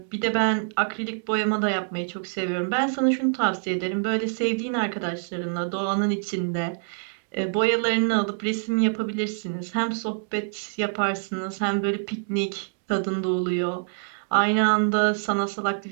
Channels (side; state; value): left; silent; digital silence